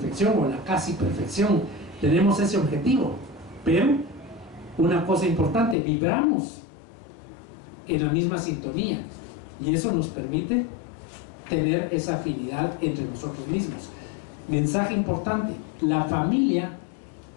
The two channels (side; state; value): right; drops out; at 5.8 s